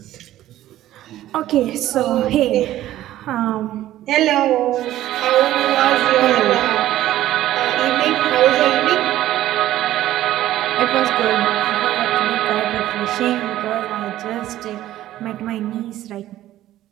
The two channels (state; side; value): quieter; left; 13.9 dB